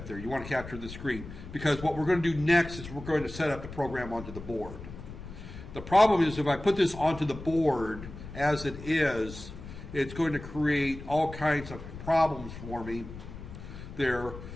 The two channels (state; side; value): noise; left; rumble, 12 dB below the sound